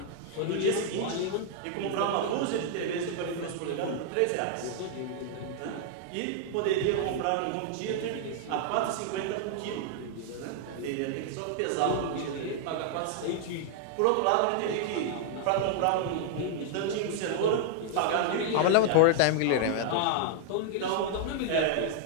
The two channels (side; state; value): both; different; correlation -0.01